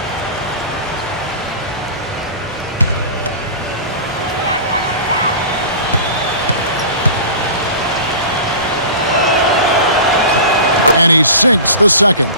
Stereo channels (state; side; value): inverted; both; correlation -0.35